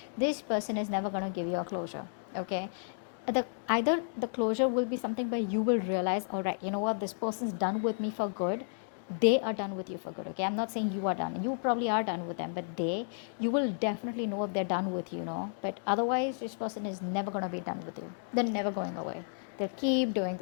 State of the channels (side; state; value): right; silent; digital silence